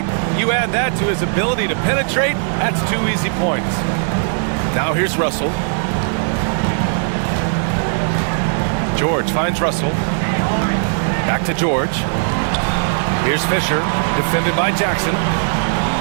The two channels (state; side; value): silent; left; 60 dB below the other